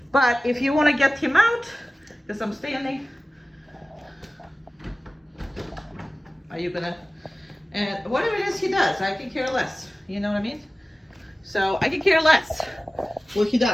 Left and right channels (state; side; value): normal; both; correlation 0.97